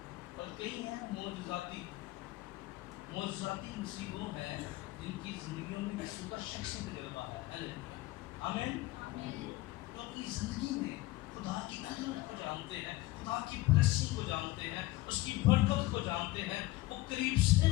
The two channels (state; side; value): quieter; right; 18.8 dB